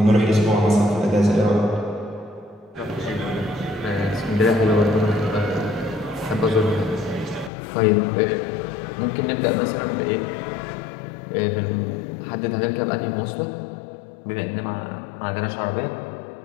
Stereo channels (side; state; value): right; drops out; at 7.5 s